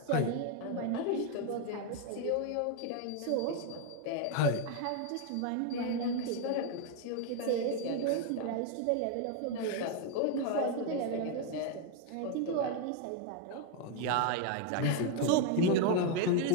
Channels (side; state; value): both; different; correlation 0.01